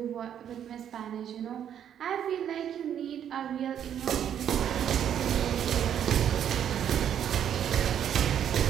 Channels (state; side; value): quieter; left; 9.4 dB